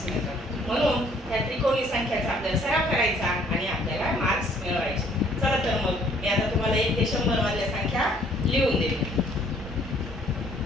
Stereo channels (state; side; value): normal; both; correlation 0.60